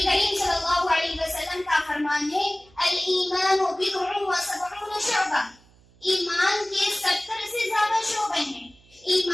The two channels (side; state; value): right; noise; hum, 29 dB below the sound